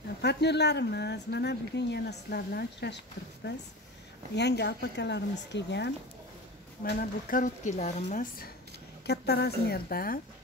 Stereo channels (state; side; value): normal; both; correlation 0.30